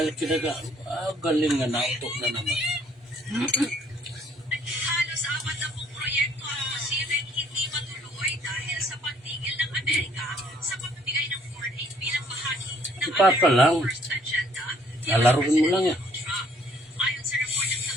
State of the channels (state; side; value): normal; both; correlation 0.62